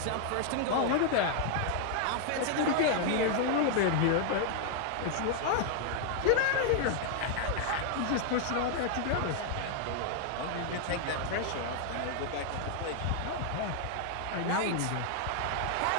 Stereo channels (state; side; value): different; both; correlation 0.00